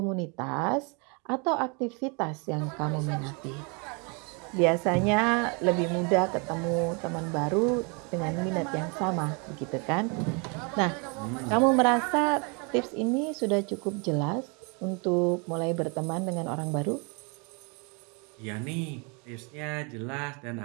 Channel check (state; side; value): quieter; left; 33.3 dB